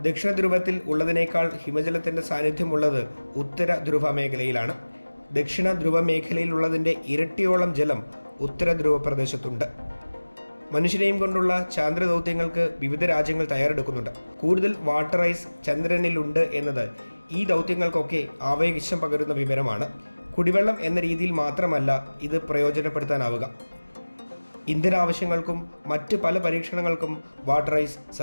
ദക്ഷിണ ധ്രുവത്തിൽ ഉള്ളതിനേക്കാൾ ഹിമജലത്തിൻ്റെ സാന്നിധ്യമുള്ളത് ഉത്തര ധ്രുവ മേഖലയിലാണ്. ദക്ഷിണ ധ്രുവ മേഖലയിലുള്ളതിൻ്റെ ഇരട്ടിയോളം ജലം ഉത്തര ധ്രുവ പ്രദേശത്തുണ്ട്. മനുഷ്യനെയും കൊണ്ടുള്ള ചാന്ദ്ര ദൗത്യങ്ങൾക്ക് വിവിധ രാജ്യങ്ങൾ തയ്യാറെടുക്കുന്നുണ്ട്. കൂടുതൽ വാട്ടർ ഐസ് ചന്ദ്രനിലുണ്ട് എന്നത് ഈ ദൗത്യങ്ങൾക്കൊക്കെ ആവേശം പകരുന്ന വിവരമാണ്. കുടിവെള്ളം എന്ന രീതിയിൽ മാത്രമല്ല ഇത് പ്രയോജനപ്പെടുത്താനാവുക. ഇന്ധന ആവശ്യങ്ങൾക്കും മറ്റ് പല പരീക്ഷണങ്ങൾക്കും വാട്ടർ ഐസ്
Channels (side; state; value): both; inverted; correlation -1.00